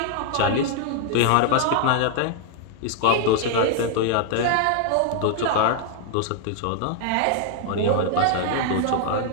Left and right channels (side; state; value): both; different; correlation 0.00